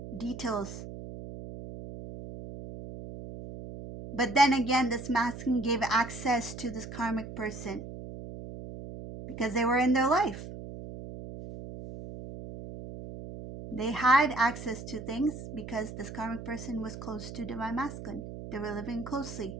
details. But then again, this masculine gave access to this karmic person because they were in their life. They had access to things because this karmic person was close to divine masculine. They were living closely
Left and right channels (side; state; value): right; noise; hum, 10 dB below the sound